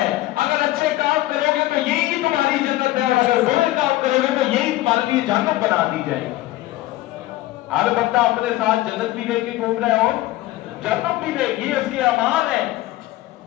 اگر اچھے کام کرو گے تو یہی تمہاری جنت ہے، اور اگر برے کام کرو گے تو یہی تمہارے لیے جہنم بنا دی جائے گی. ہر بندہ اپنے ساتھ جنت بھی لے کے گھوم رہا ہے اور جہنم بھی لے، یہ اس کے امان ہے.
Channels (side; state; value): right; quieter; 16.6 dB